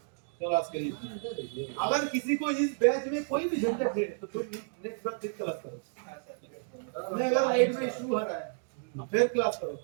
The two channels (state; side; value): silent; left; digital silence